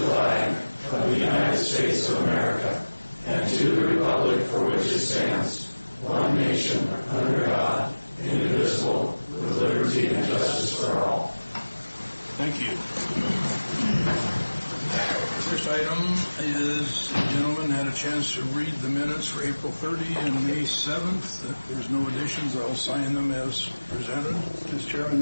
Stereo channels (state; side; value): inverted; both; correlation -1.00